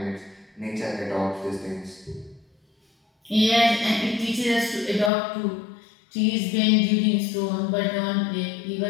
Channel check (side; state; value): right; drops out; at 5.1 s